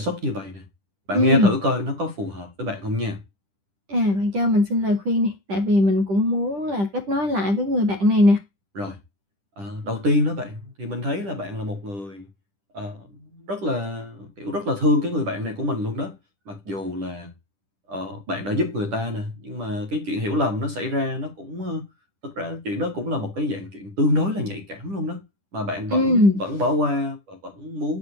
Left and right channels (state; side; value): late; left; 10 ms